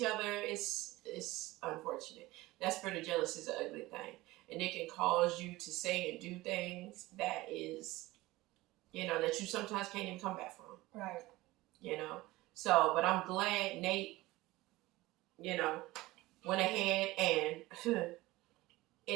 other. It's unfortunate. That spirit of jealousy is an ugly thing. And it can cause you to say and do things that is, that you sometimes can't even come back from. Right. So, but I'm glad Nate, went ahead and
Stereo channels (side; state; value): left; quieter; 18.9 dB